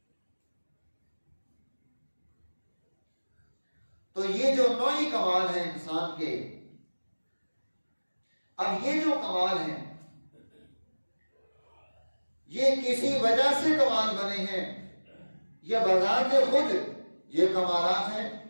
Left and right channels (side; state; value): both; inverted; correlation -1.00